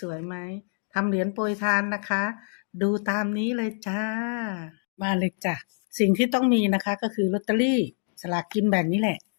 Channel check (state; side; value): silent; right; 57 dB below the other